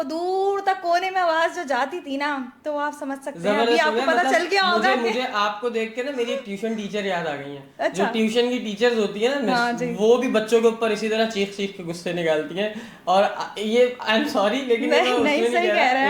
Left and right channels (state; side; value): identical; both; correlation 1.00